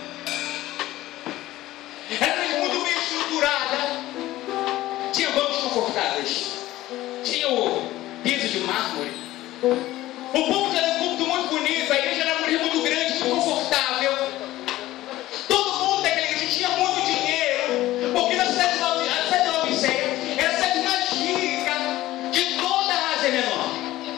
Era uma igreja muito bem estruturada. Tinha bancos confortáveis. Tinha o piso de mármore. O púlpito era um púlpito muito bonito. A igreja era uma igreja muito grande, muito confortável. Todo mundo daquela igreja tinha muito dinheiro, porque na cidade de Laodiceia era a cidade mais rica de toda a Ásia Menor.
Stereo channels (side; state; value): right; quieter; 16.0 dB